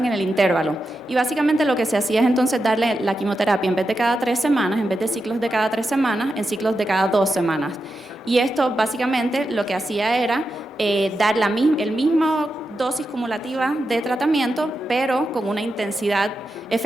en el intervalo. Y básicamente lo que se hacía es entonces darle la quimioterapia en vez de cada 3 semanas, en vez de ciclos de cada 3 semanas, en ciclos de cada 2 semanas. Y esto básicamente lo que hacía era dar el mismo dosis cumulativa de tratamiento, pero con una intensidad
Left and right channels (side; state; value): both; normal; correlation 0.88